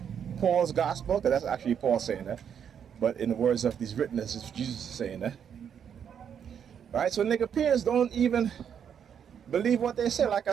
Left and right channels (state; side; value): quieter; left; 8.1 dB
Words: Paul's gospel, because that's actually Paul saying that, but in the words of these witnesses, it's Jesus saying that. Right? So Nicopians don't even believe what they say, like